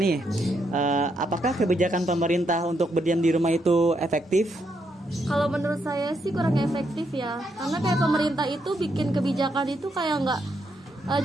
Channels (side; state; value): both; normal; correlation 0.78